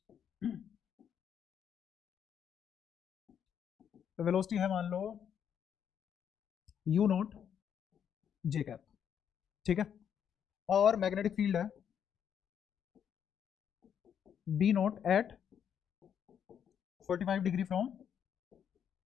वेलोसिटी है मान लो u नॉट j कैप, ठीक है, और मैग्नेटिक फील्ड है b not at 45 degree from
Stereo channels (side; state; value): right; quieter; 8.5 dB